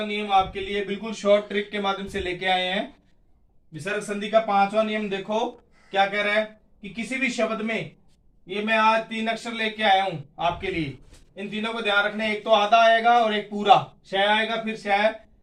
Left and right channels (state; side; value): identical; both; correlation 1.00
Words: नियम आपके लिए बिल्कुल शॉर्ट ट्रिक के माध्यम से लेके आए हैं। विसर्ग संधि का 5वां नियम देखो क्या कह रहा है कि किसी भी शब्द में, ये मैं आज 3 अक्षर लेके आया हूं आपके लिए। इन तीनों को ध्यान रखना है। एक तो आधा आएगा और एक पूरा, शय आएगा फिर शय,